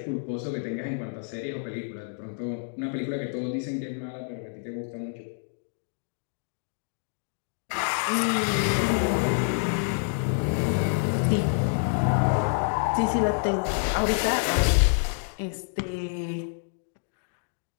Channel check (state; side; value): silent; right; digital silence